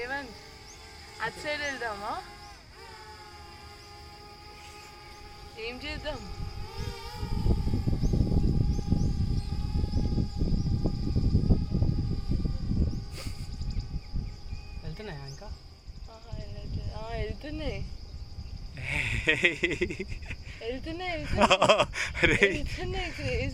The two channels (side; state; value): both; identical; correlation 1.00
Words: అటు సైడ్ వెళ్దామా? ఏం చేద్దాం? వెళ్తున్నాయా ఇంకా? వెళ్తున్నాయి.